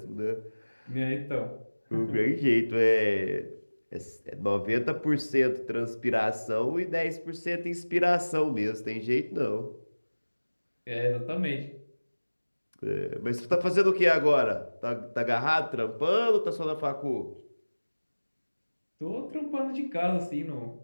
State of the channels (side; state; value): both; inverted; correlation -1.00